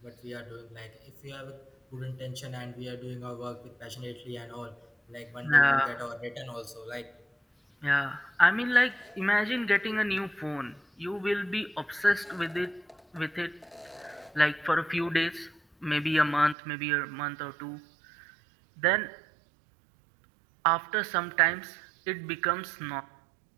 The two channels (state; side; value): drops out; left; at 16.6 s